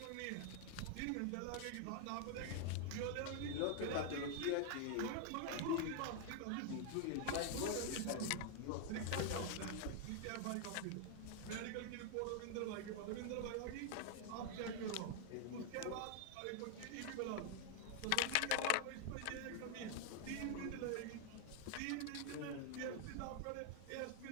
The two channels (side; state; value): both; different; correlation 0.00